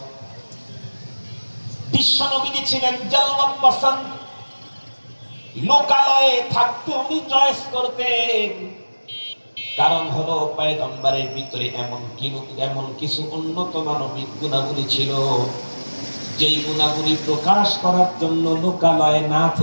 বিশ্বনবী ছিলেন জালওয়াত পছন্দ, লোকালয়ে থাকতে উনি চয়েস করতেন। কারণ হলো পয়গম্বরের ভিতরে এমন কিছু উন্নত মানবিক গুণাবলী ছিল, যেই গুণাবলী প্রকাশ করার জন্য লোকালয়ে না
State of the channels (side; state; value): both; inverted; correlation -1.00